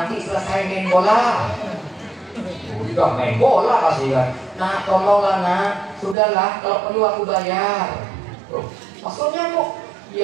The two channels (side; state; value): left; drops out; at 6.2 s